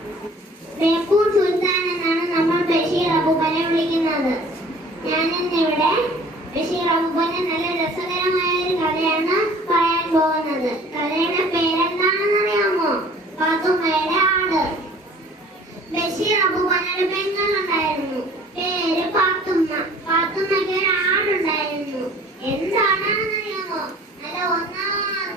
ബേപ്പൂർ സുൽത്താൻ എന്നാണ് നമ്മൾ ബഷീർ അബൂബക്കറിനെ വിളിക്കുന്നത്. ഞാനിന്നിവിടെ ബഷീർ അബൂബക്കറിന്റെ നല്ല രസകരമായ ഒരു കഥയാണ് പറയാൻ പോകുന്നത്. കഥയുടെ പേരെന്താണെന്ന് അറിയാമോ? പാത്തുമ്മയുടെ ആട്. ബഷീർ അബൂബക്കറിന്റെ പെങ്ങളുണ്ടായിരുന്നു, പേര് പാത്തുമ്മ. പാത്തുമ്മയ്ക്ക് ഒരു ആടുണ്ടായിരുന്നു. എന്താണെന്ന് അറിയാമോ? നല്ല ഒന്നാം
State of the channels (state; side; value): normal; both; correlation 0.50